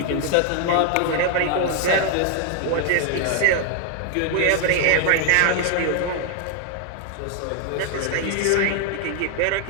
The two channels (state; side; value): different; both; correlation 0.01